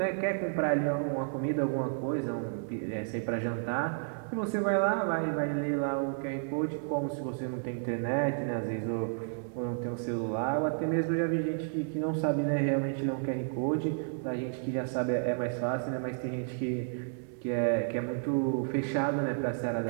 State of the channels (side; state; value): left; silent; 57 dB below the other